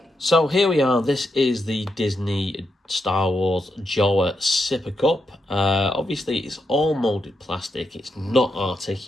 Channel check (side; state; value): both; normal; correlation 0.83